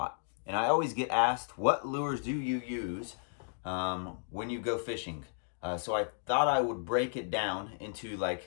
And I always get asked, what lures do you use when you go fishing? So I thought I would break it down into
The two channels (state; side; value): silent; right; digital silence